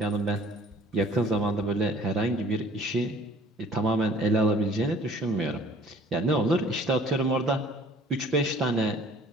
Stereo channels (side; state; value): both; normal; correlation 0.52